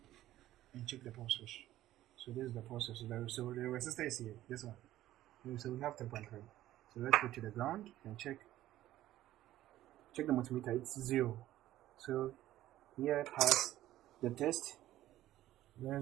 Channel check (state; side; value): quieter; left; 14.2 dB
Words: and check the power switch. So this is the power switch. So the resistor is here. This one. So we have 3.3. So let's go to the ground and check the multimeter. It's 0. So here pass the test.